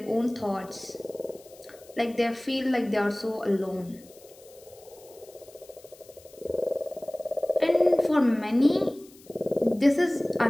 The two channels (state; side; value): noise; left; hiss, 24 dB below the sound